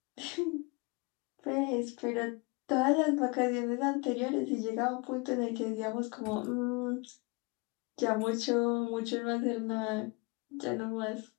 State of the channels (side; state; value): right; quieter; 29.1 dB